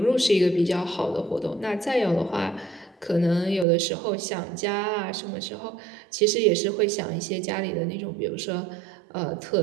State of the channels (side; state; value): left; drops out; at 3.7 s